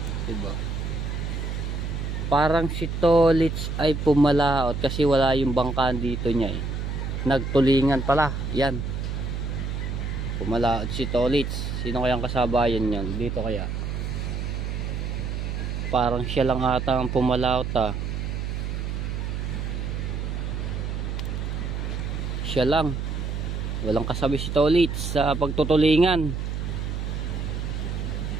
Diba? Parang si Tolits ay pumalaot kasi wala yung bangkaan dito niya eh. Nagtulingan pala. Yan. Pumalaot si Tolits. Sino kayang kasabayan yan? Dito kaya? Parang siya lang ata ang pumalaot ah. Siya lang. Walang kasabi si Tolits sa pagtutulingan.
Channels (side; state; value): right; noise; hum, 3 dB below the sound